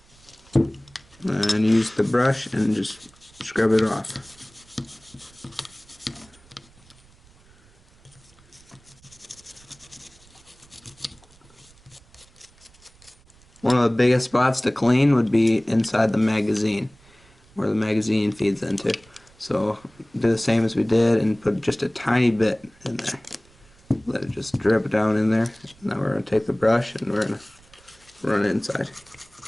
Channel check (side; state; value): right; noise; rumble, 28 dB below the sound